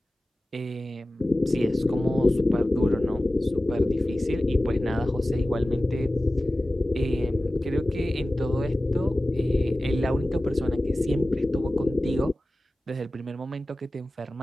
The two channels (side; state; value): both; normal; correlation 0.96